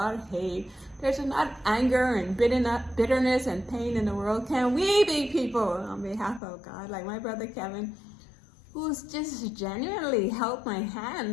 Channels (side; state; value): right; drops out; at 6.4 s